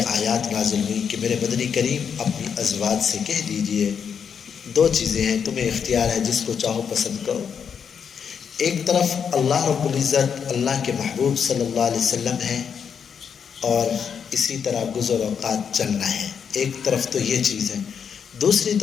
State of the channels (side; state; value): right; quieter; 7.1 dB